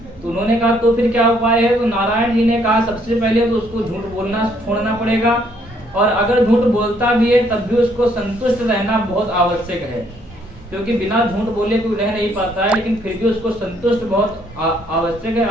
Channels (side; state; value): both; normal; correlation 0.67